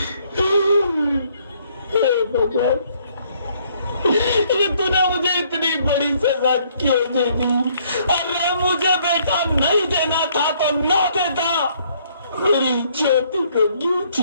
ये तूने मुझे इतनी बड़ी सजा क्यों दे दी? अरे मुझे बेटा नहीं देना था तो ना देता, मेरी ज्योति को क्यों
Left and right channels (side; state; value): both; inverted; correlation -0.65